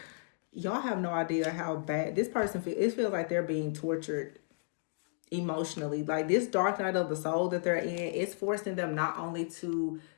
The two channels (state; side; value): silent; right; digital silence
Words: y'all have no idea how bad this person feels. It feels like they're being tortured emotionally. Like this dark night of the soul that they're in, it's forcing them not only to